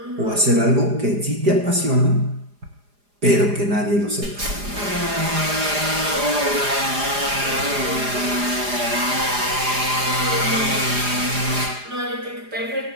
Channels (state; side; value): late; left; 4.9 ms